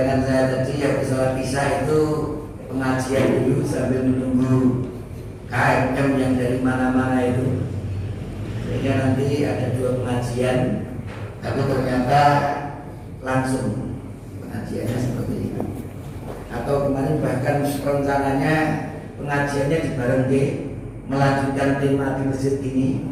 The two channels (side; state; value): both; identical; correlation 1.00